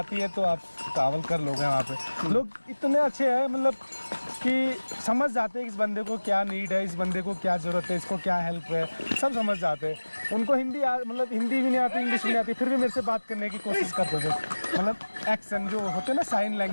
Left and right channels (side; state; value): both; inverted; correlation -1.00